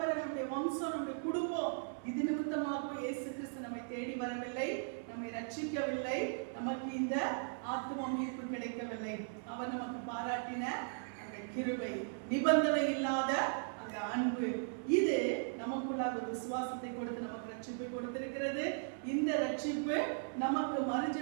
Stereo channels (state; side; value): silent; left; 53 dB below the other